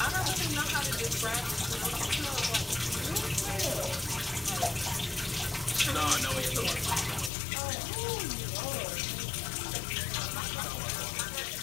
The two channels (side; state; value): right; drops out; at 7.3 s